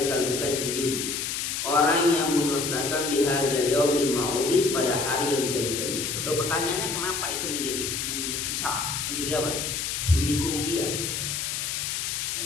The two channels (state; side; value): noise; left; hiss, 2 dB below the sound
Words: mukadzibin, orang yang mendustakan bihadzal yaumil ma'udi, pada hari yang dijanjikan itu. Loh, pertanyaannya kenapa itu menjadi hisab, menjadi apa? Menjadi kerugian. Yang